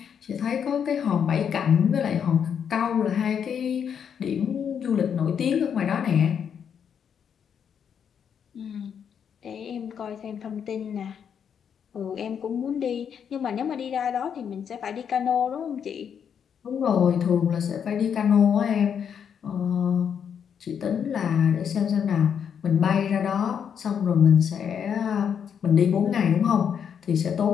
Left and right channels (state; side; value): quieter; right; 7.8 dB